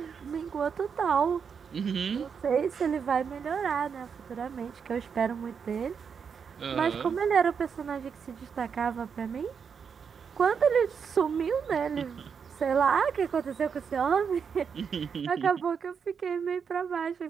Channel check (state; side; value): quieter; left; 6.5 dB